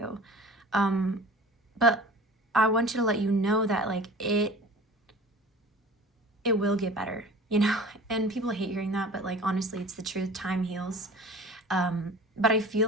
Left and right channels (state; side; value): normal; both; correlation 0.41